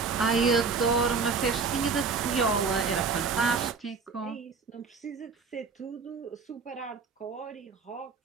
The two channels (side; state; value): left; quieter; 4.9 dB